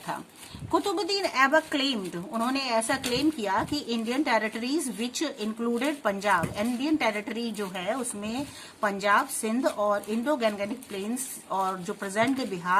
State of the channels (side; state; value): both; identical; correlation 1.00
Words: कुतुबुद्दीन ऐबक क्लेम्ड, उन्होंने ऐसा क्लेम किया कि Indian territories which included Punjab, Indian territory जो है उसमें पंजाब, सिंध और इंडो गैंगेटिक प्लेन्स और जो प्रेजेंट डे